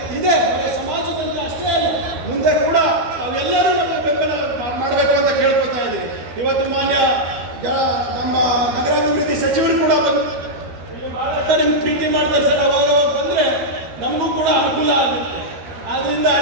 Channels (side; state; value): left; late; 12 ms